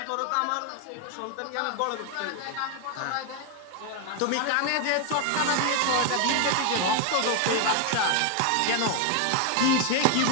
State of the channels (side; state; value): both; different; correlation 0.01